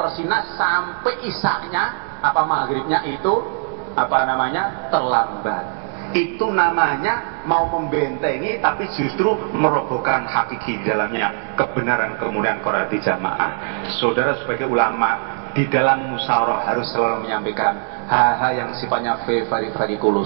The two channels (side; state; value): left; silent; 65 dB below the other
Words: sampai isyanya apa maghribnya itu apa namanya terlambat. Itu namanya mau membentengi tapi justru merobohkan hakiki di dalamnya kebenaran kemudian Quran di jamaah. Saudara sebagai ulama di dalam musyawarah harus selalu menyampaikan hal-hal yang sifatnya very